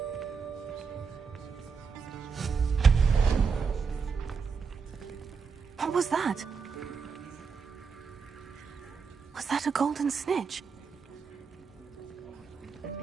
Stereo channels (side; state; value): left; quieter; 5.5 dB